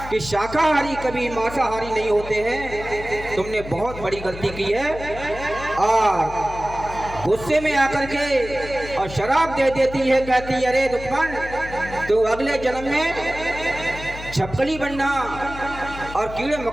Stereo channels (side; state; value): left; noise; hum, 12 dB below the sound